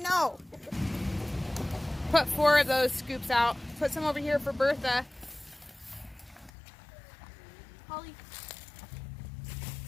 Put 4 of those scoops out. Put some over here for Bertha. Holly.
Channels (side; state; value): right; drops out; at 6.5 s